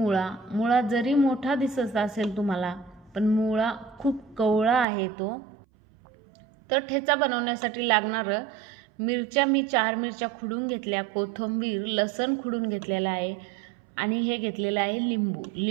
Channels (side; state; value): left; drops out; at 4.9 s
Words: जरी मोठा दिसत असेल तुम्हाला, पण मुळा खूप कवळा आहे तो। तर ठेचा बनवण्यासाठी लागणार मिरच्या मी 4 मिरच्या खुडून घेतल्या, कोथिंबीर लसण खुडून घेतलेला आहे आणि हे घेतलेलं आहे